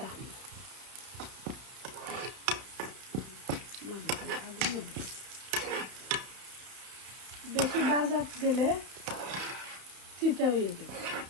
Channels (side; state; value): left; late; 31 ms